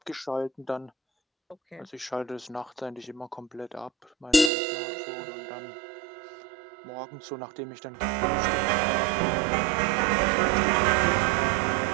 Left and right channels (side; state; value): left; drops out; at 4.5 s